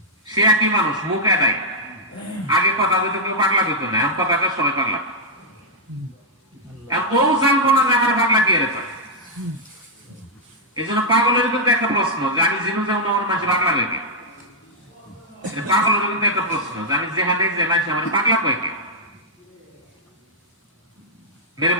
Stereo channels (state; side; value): normal; both; correlation -0.06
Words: সে একই মানুষ, মুখ এদাই। আগে কথা বলতে কেউ পাগলা হইতো না, এখন কথা সবাই পাগলা। ও জানবো না যে আমার পাগলা কি এর। এই জন্য পাগলের কিন্তু একটা প্রশ্ন যে আমি জিনু যাবো না, আমার মানুষ পাগলা হয়ে গে। পাগলের কিন্তু একটা প্রশ্ন যে আমি যেখানে যে মানুষ আমার পাগলা হয়ে গে। মেরে